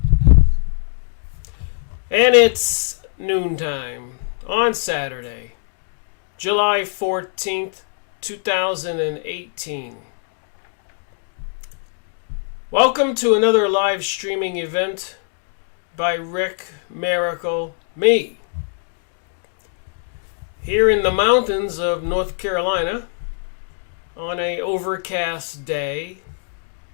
And it's noontime on Saturday, July 14th, 2018. Welcome to another live streaming event by Rick Miracle, me. Here in the mountains of North Carolina on an overcast day.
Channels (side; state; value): right; silent; 64 dB below the other